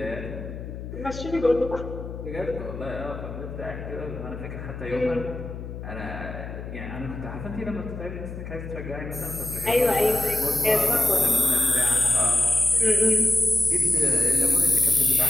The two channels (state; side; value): noise; left; hum, 9 dB below the sound